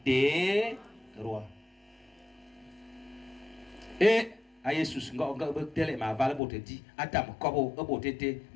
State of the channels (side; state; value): right; drops out; at 6.4 s